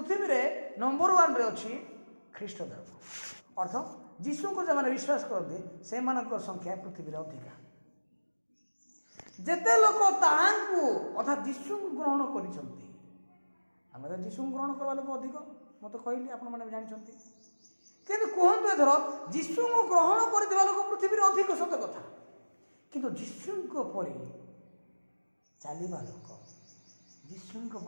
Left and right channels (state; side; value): inverted; both; correlation -1.00